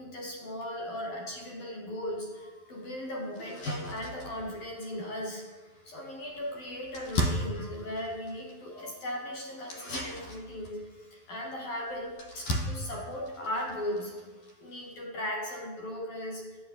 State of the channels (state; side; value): late; right; 12 ms